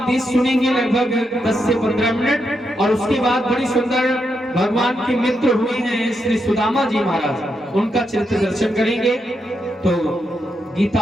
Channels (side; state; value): both; normal; correlation 0.82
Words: सुनेंगे लगभग 10 से 15 मिनट, और उसके बाद बड़ी सुंदर भगवान के मित्र हुए हैं श्री सुदामा जी महाराज, उनका चरित्र दर्शन करेंगे। तो गीता